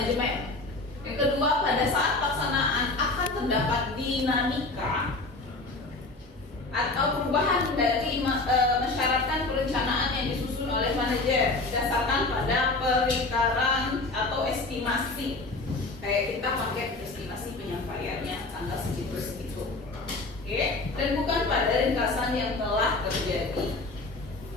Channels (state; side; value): quieter; right; 3.2 dB